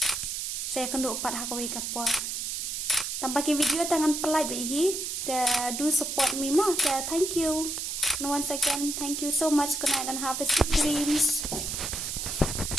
saya kendu pat ha kawi kapor tampaki video tangan pelai bihi do support me more thank you once again thank you so much good night and have a sweet dreams.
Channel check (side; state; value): right; noise; hiss, 3 dB below the sound